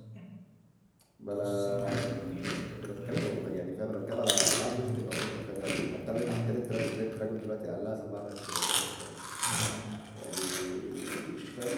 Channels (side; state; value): both; identical; correlation 1.00